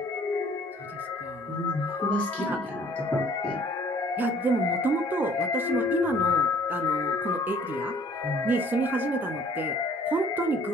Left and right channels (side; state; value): both; normal; correlation 0.56